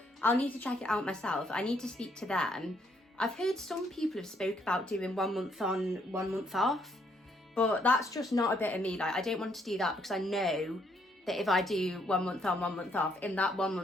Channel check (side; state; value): both; normal; correlation 0.71